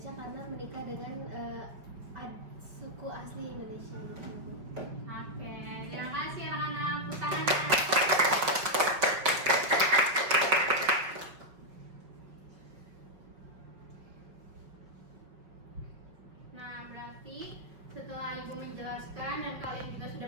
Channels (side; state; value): left; late; 5.6 ms